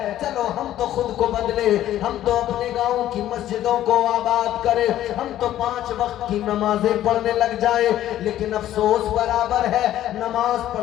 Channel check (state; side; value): quieter; right; 12.8 dB